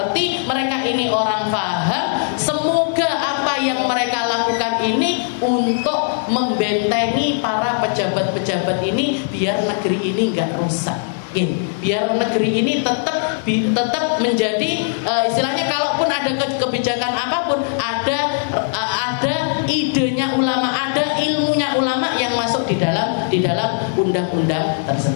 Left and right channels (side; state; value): right; silent; digital silence